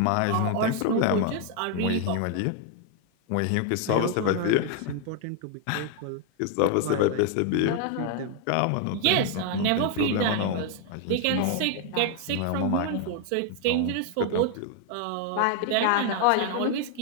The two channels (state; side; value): different; both; correlation 0.00